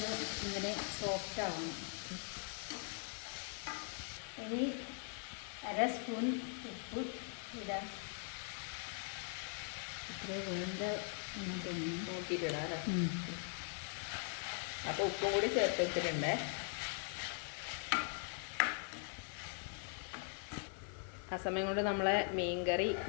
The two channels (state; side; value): silent; right; 50 dB below the other